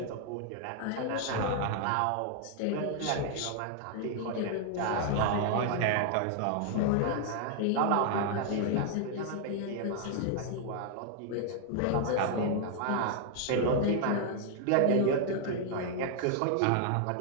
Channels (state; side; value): different; both; correlation 0.00